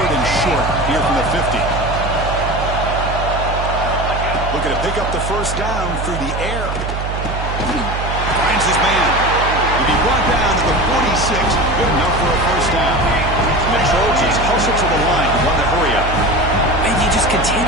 and short here from the 50. Looking to pick up the 1st down through the air. Finds his man. He'll be brought down to the 46. Good enough for a 1st down. And the Trojans hustle to the line. Want to hurry up. And you just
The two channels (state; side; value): noise; right; hum, 4 dB below the sound